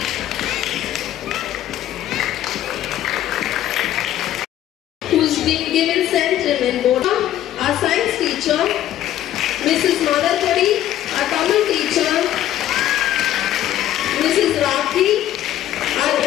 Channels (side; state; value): right; quieter; 12.5 dB